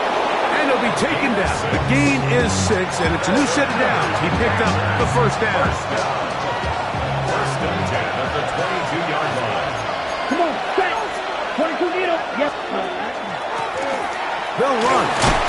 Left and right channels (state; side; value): identical; both; correlation 1.00